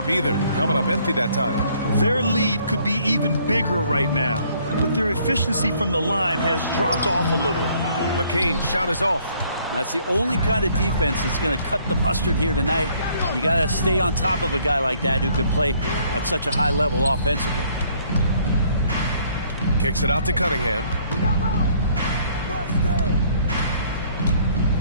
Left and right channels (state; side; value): inverted; both; correlation -0.63